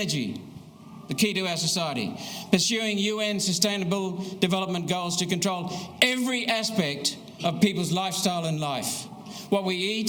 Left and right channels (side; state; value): both; identical; correlation 1.00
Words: the key to our society. Pursuing UN Sustainable Development Goals to control every aspect of people's lifestyle and life. What we